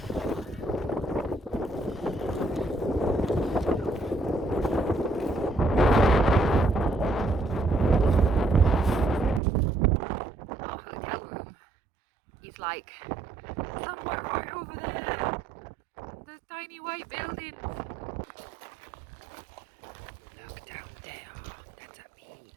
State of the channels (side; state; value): left; drops out; at 9.4 s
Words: hotel room is like somewhere right over there. There's tiny white buildings. Look down there. That's a peak.